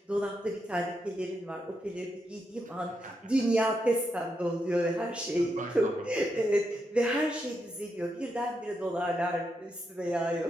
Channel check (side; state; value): both; normal; correlation 0.83